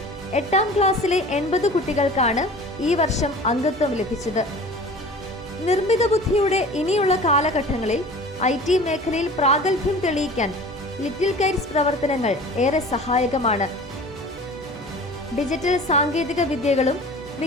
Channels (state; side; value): normal; both; correlation 0.42